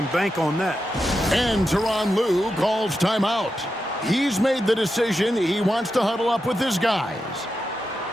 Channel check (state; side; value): normal; both; correlation 0.88